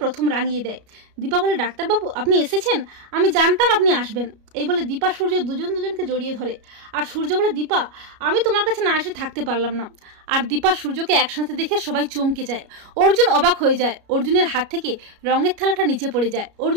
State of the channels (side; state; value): left; late; 33 ms